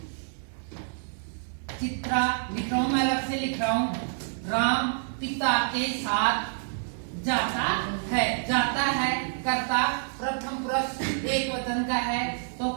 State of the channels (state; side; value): silent; left; digital silence